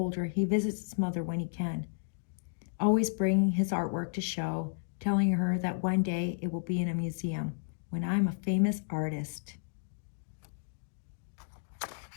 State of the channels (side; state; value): right; silent; digital silence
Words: he visits his mother when he can, always bringing his artwork to show, telling her that one day it will be in a museum. when I'm a famous artist.